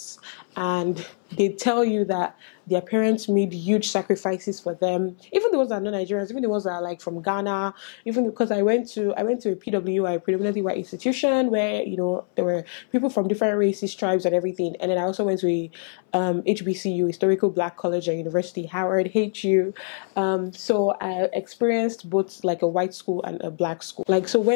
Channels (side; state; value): right; silent; 62 dB below the other